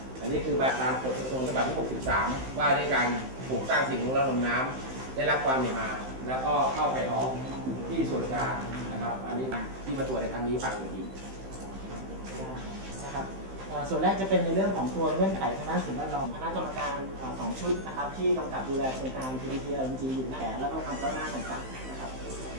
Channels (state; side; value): late; left; 15 ms